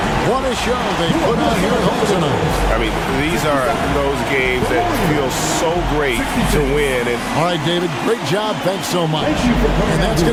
What a show they put on here at home tonight. I mean, these are those games that feel so great to win. And all right, David, great job. Thanks so much. And that's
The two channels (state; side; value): identical; both; correlation 1.00